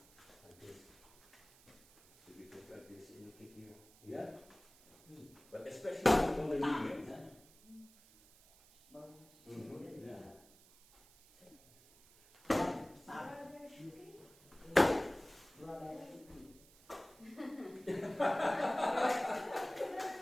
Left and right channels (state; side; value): noise; right; hiss, 25 dB below the sound